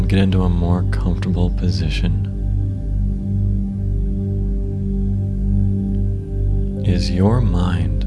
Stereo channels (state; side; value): identical; both; correlation 1.00